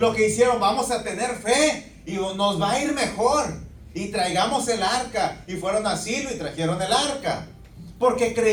que hicieron, vamos a tener fe y nos va a ir mejor. Y traigamos el arca. Y fueron a Silo y trajeron el arca. Porque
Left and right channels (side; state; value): both; identical; correlation 1.00